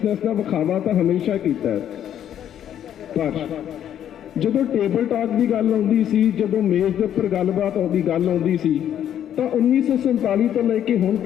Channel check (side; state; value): right; quieter; 10.2 dB